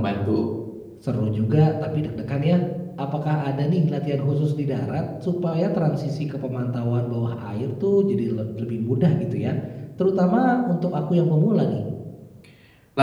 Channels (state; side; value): identical; both; correlation 1.00